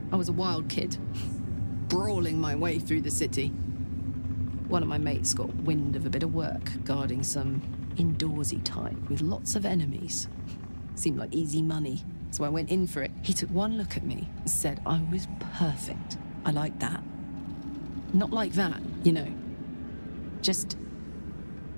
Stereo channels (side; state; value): both; inverted; correlation -1.00